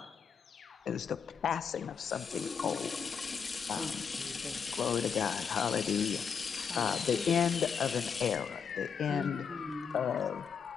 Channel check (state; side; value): quieter; right; 6.6 dB